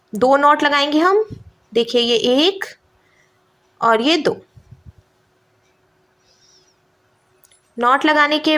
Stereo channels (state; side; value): identical; both; correlation 1.00